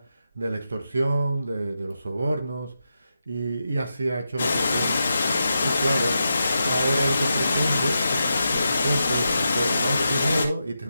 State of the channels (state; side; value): inverted; both; correlation -0.87